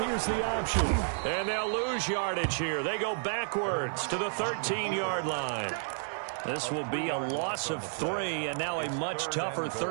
here's the option. And they'll lose yardage here. They go backwards to the 13-yard line. This will be a loss of 3, and now a much tougher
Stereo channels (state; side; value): silent; left; 57 dB below the other